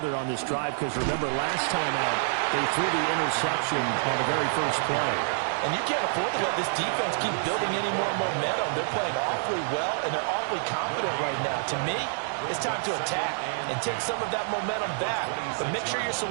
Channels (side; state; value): left; silent; digital silence